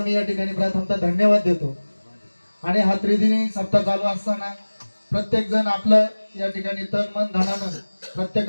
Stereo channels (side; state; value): both; inverted; correlation -1.00